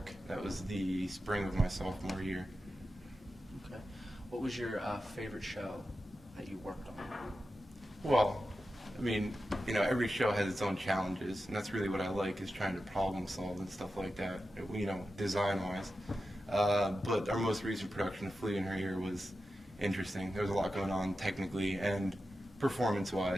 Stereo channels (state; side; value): normal; both; correlation 0.91